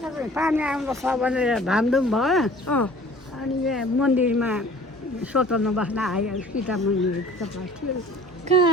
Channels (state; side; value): normal; both; correlation 0.49